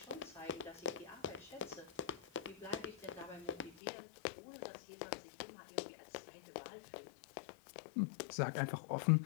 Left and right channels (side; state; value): right; drops out; at 3.8 s